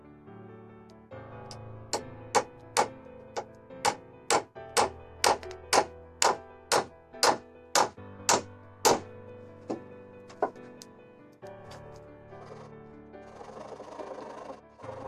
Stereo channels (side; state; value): both; identical; correlation 1.00